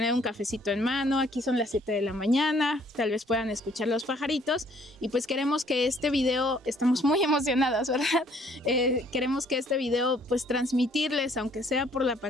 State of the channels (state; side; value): normal; both; correlation 0.62